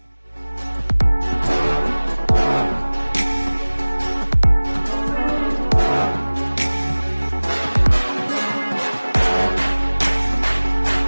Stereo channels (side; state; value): both; inverted; correlation -1.00